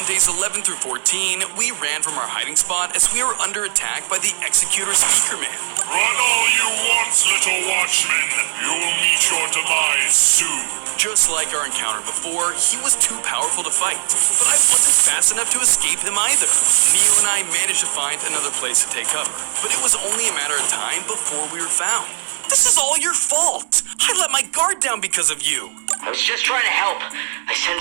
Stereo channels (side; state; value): left; silent; digital silence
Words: days 11 through 14, we ran from our hiding spot as we were under attack by the Executor Speakerman. Run all you want, little Watchman. You'll meet your demise soon. Just like our encounter before, he was too powerful to fight, but I wasn't fast enough to escape him either. Neo and I managed to find another place to take cover, but it was only a matter of time before we were found. This is all your fault! I let my guard down because of you! I was just trying to help. I